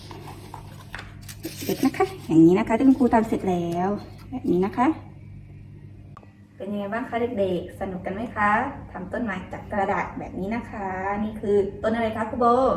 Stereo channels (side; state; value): both; identical; correlation 1.00